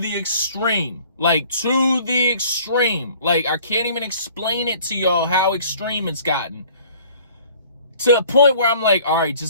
the extreme, like to the extreme. Like, I can't even explain it to y'all how extreme it's gotten. To a point where I'm like, all right,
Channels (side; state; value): both; inverted; correlation -0.53